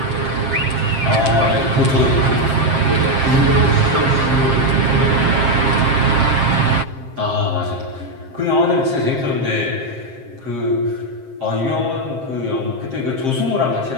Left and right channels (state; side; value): late; left; 7.6 ms